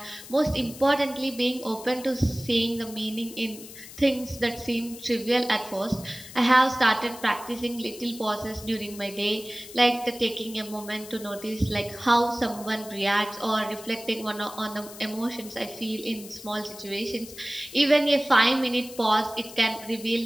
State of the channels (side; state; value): left; noise; hiss, 15 dB below the sound